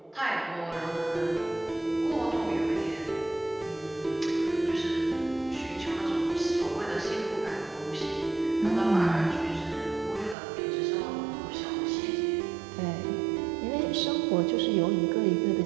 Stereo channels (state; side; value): drops out; left; at 10.4 s